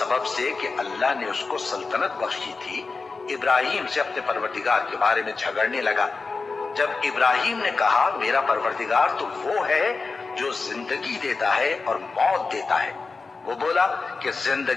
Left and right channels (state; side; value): quieter; right; 4.2 dB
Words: سے کہ اللہ نے اس کو سلطنت بخشی تھی، ابراہیم سے اپنے پروردگار کے بارے میں جھگڑنے لگا؟ جب ابراہیم نے کہا میرا پروردگار تو وہ ہے جو زندگی دیتا ہے اور موت دیتا ہے، وہ بولا کہ